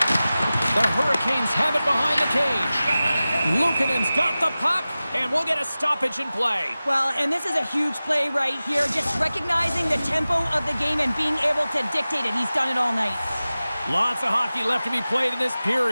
The Hurricanes have it behind the cage. Luukkonen's got the puck, and we'll get a stoppage in play. Well, and this is a huge play right here. Just recognizing the tempo of the game and being able to dictate it. He's done it all night. Lots of hockey left to be played in this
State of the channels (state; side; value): inverted; both; correlation -0.96